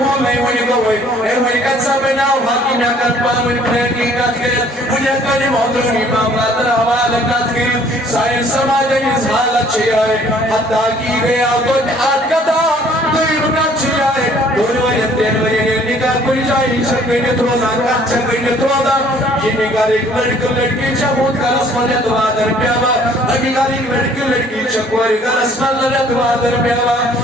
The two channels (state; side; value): normal; both; correlation 0.58